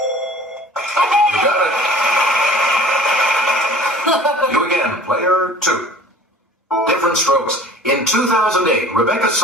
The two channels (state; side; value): normal; both; correlation 0.47